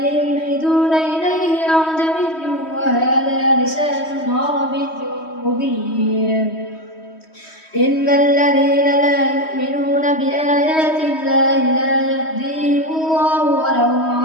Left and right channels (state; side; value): late; right; 3.1 ms